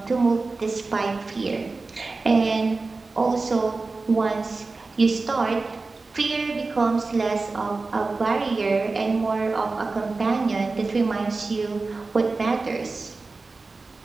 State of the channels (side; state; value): left; quieter; 3.7 dB